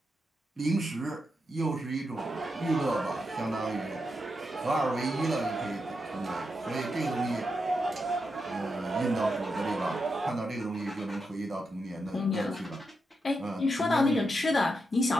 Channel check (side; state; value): both; normal; correlation 0.85